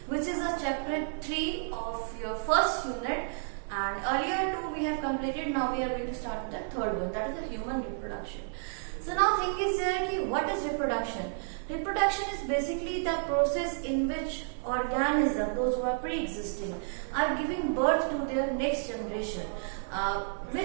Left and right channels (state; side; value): silent; left; digital silence